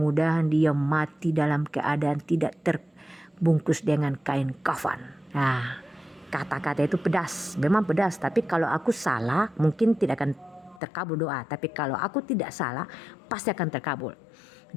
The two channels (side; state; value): right; drops out; at 10.8 s